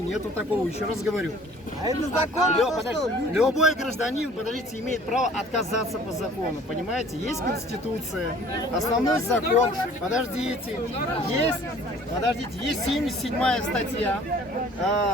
такого, еще раз говорю. А это закон? Любой гражданин, подождите, имеет право отказаться по закону, понимаете? Есть Конституция, основной закон, подождите, есть 77-я статья,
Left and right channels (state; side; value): normal; both; correlation 0.52